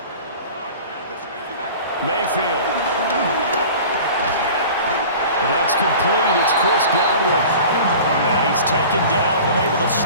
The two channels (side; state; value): both; inverted; correlation -0.40